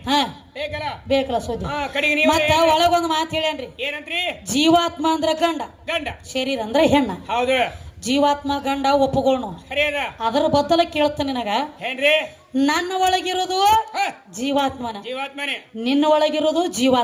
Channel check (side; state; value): both; identical; correlation 1.00